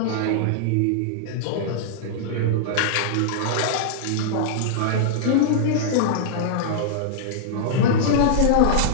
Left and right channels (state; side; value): different; both; correlation -0.02